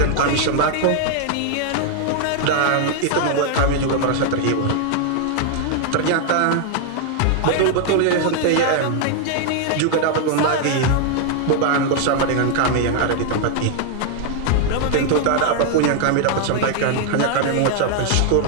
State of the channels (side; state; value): both; different; correlation 0.00